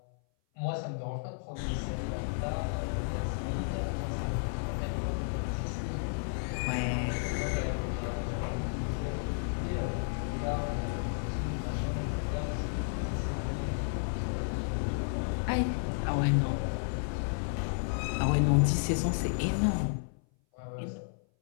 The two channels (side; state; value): right; silent; 56 dB below the other